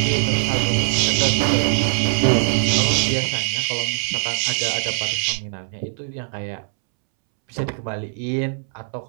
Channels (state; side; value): silent; left; 65 dB below the other